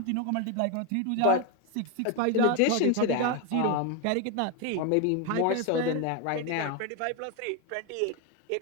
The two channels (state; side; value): different; both; correlation 0.01